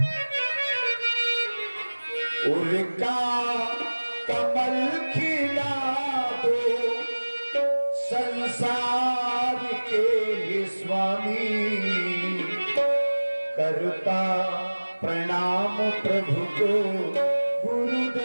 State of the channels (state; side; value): inverted; both; correlation -1.00